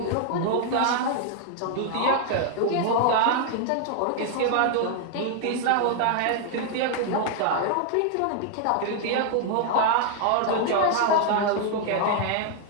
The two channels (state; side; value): different; both; correlation 0.00